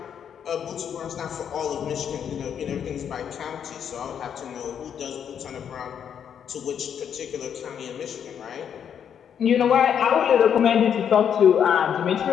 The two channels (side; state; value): right; quieter; 8.3 dB